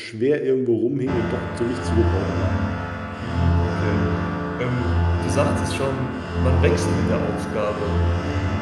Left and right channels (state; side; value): identical; both; correlation 1.00